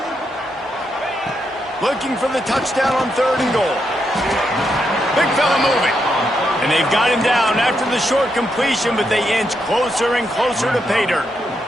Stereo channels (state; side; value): normal; both; correlation 0.81